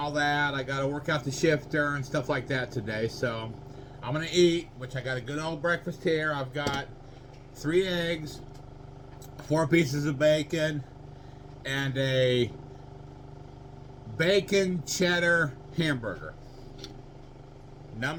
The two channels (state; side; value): identical; both; correlation 1.00